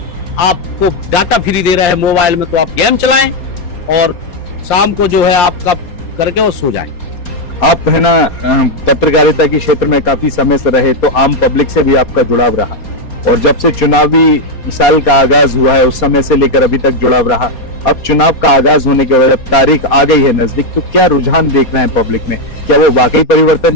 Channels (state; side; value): late; right; 4.2 ms